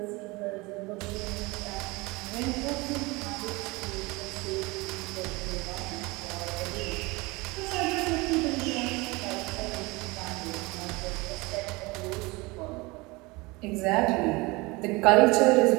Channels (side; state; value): left; quieter; 24.2 dB